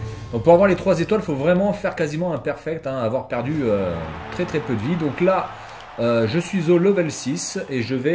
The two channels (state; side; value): identical; both; correlation 1.00